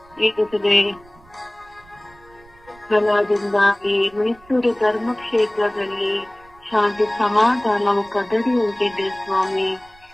ಈಗಲೇ ಫಲದಿಂದಾಗಿ ಮೈಸೂರು ಧರ್ಮಕ್ಷೇತ್ರದಲ್ಲಿ ಶಾಂತಿ ಸಮಾಧಾನವು ಕದಡಿ ಹೋಗಿದೆ ಸ್ವಾಮಿ.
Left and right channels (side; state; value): right; noise; rumble, 27 dB below the sound